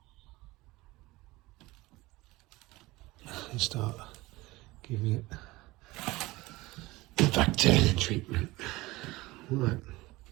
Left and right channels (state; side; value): quieter; left; 20.4 dB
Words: And start giving it the bacteria treatment. Right.